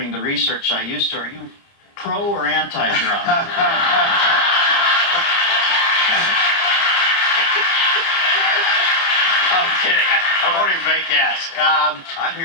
the research I used to. Are you pro or anti-drug? I'm kidding. I won't even make ask. I'm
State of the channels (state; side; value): late; right; 30 ms